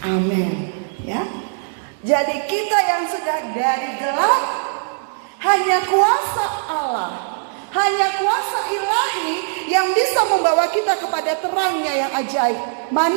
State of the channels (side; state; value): left; silent; digital silence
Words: Amin. Ya. Jadi kita yang sudah dari gelap, hanya kuasa Allah, hanya kuasa ilahi yang bisa membawa kita kepada terangnya yang ajaib.